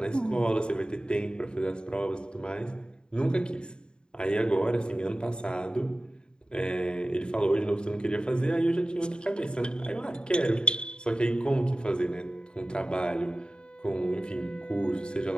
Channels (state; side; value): late; right; 0.049 ms